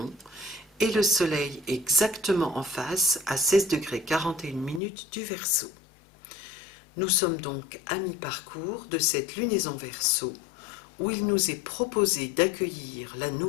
et le Soleil exactement en face à 16 degrés 41 minutes du Verseau. Nous sommes donc à mi-parcours de cette lunaison Verseau où il nous est proposé d'accueillir la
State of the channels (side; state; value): right; drops out; at 4.8 s